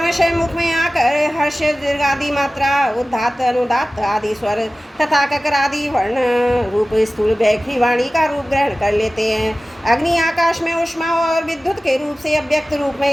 मुख में आकर हर्ष दीर्घ आदि मात्रा उदात्त अनुदात्त आदि स्वर तथा ककर आदि वर्ण रूप स्थूल बैखरी वाणी का रूप ग्रहण कर लेते हैं। अग्नि आकाश में उष्मा और विद्युत के रूप से अव्यक्त रूप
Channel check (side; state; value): both; normal; correlation 0.96